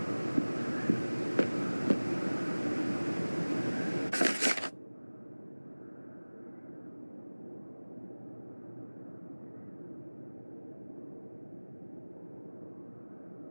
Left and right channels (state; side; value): inverted; both; correlation -1.00